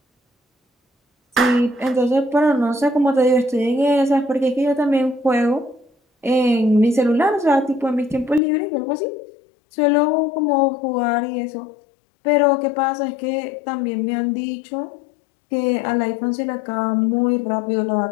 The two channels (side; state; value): right; drops out; at 8.4 s